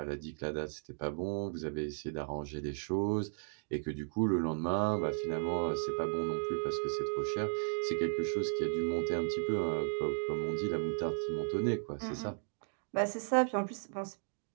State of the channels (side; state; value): left; silent; digital silence